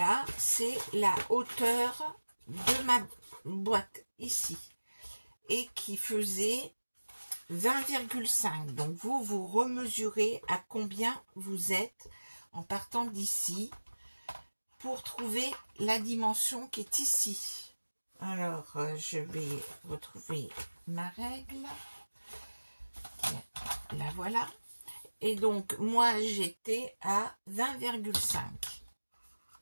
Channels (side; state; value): both; inverted; correlation -1.00